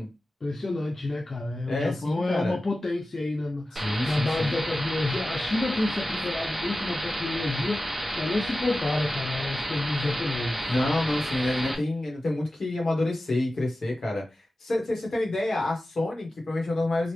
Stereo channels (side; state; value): both; normal; correlation 0.95